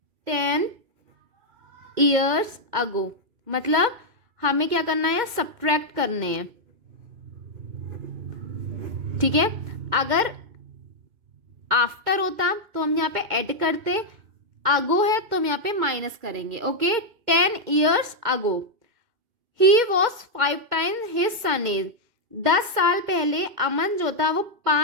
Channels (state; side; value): late; left; 2.1 ms